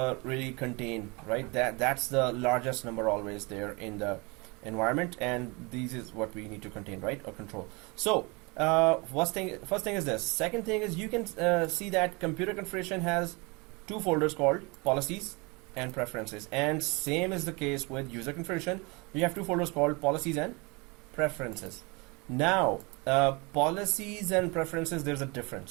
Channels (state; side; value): quieter; left; 28.2 dB